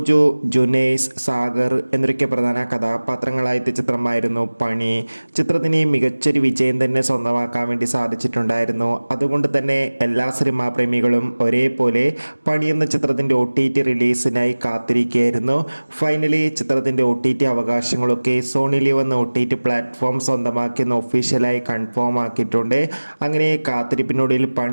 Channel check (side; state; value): both; inverted; correlation -1.00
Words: ജുനൈസ്, സാഗർ എന്നൊക്കെ പ്രധാന കഥാപാത്രങ്ങളായ ചിത്രമായിരുന്നു പണി. ചിത്രത്തിന് മികച്ചൊരു വിജയം തന്നെ സ്വന്തമാക്കാൻ വേണ്ടി സാധിച്ചിട്ടുണ്ടായിരുന്നു. അതുകൊണ്ട് തന്നെ എല്ലാ സിനിമാ പ്രേമികളും ഒരേപോലെ പണി എന്ന ചിത്രത്തിൻ്റെ OTT റിലീസിനായി കാത്തിരിക്കുകയായിരുന്നു. ഫൈനലി ചിത്രത്തിൻ്റെ OTT അവകാശങ്ങളൊക്കെ സോണി ലീവ് എന്ന OTT പ്ലാറ്റ്ഫോം സ്വന്തമാക്കിയെന്ന് ഒഫീഷ്യലായി കൺഫേം ആക്കിയിട്ടുണ്ട്. അങ്ങനെ കാത്തിരിപ്പിനൊടുവിൽ